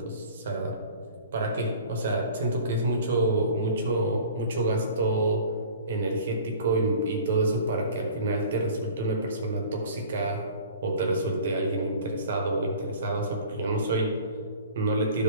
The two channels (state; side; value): inverted; both; correlation -0.44